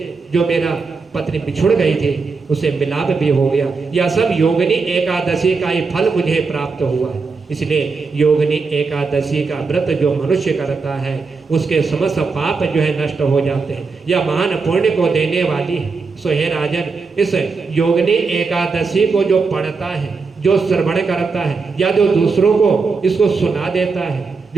जो मेरा पत्नी बिछुड़ गई थी, उसे मिलाप भी हो गया। यह सब योगिनी एकादशी का ही फल मुझे प्राप्त हुआ है। इसलिए योगिनी एकादशी का व्रत जो मनुष्य करता है, उसके समस्त पाप जो है नष्ट हो जाते हैं। यह महान पुण्य को देने वाली है। सो हे राजन, इस योगिनी एकादशी को जो पढ़ता है, जो श्रवण करता है, या जो दूसरों को इसको सुना देता है,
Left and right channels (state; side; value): quieter; left; 4.6 dB